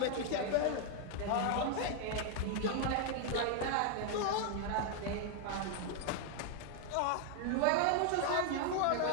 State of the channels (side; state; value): both; different; correlation 0.00